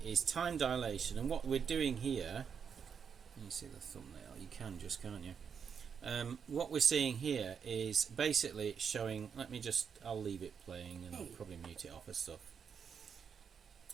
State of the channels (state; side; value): quieter; left; 6.9 dB